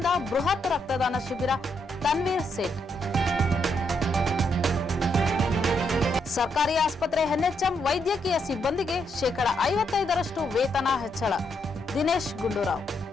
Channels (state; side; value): normal; both; correlation 0.77